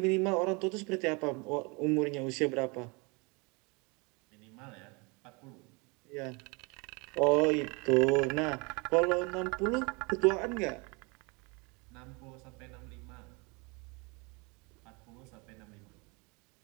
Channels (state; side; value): quieter; left; 29.5 dB